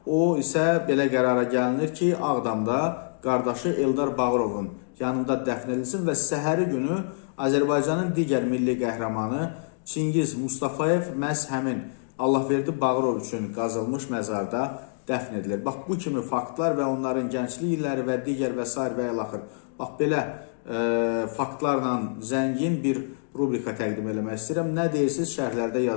o isə belə qərara gəlinir ki, Ağdamda qardaşı Eldar Bağırovun yanında dəfn edilsin və səhəri günü Azərbaycanın digər milli qəhrəmanı Çingiz Mustafayev məhz həmin Allahverdi Bağırov üçün qazılmış məzarda dəfn edilir. Bax, bu kimi faktlar və onların gənclik illəri və digər və s. və ilaxır. Bax, belə faktlarla zəngin bir rubrika təqdim eləmək istəyirəm. Nə deyirsiniz, şərhlərdə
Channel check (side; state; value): right; silent; digital silence